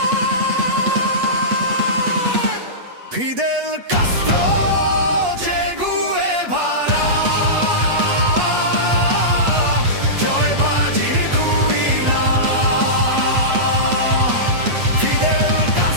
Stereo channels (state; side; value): late; left; 8.3 ms